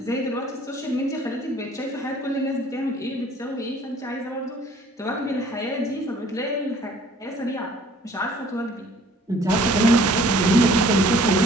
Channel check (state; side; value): normal; both; correlation 0.55